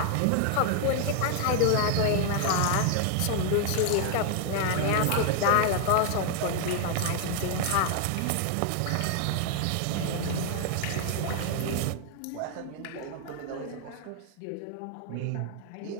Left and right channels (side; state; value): both; different; correlation 0.00